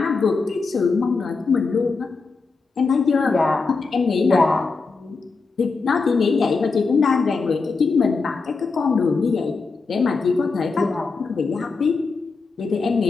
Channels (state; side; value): quieter; right; 4.4 dB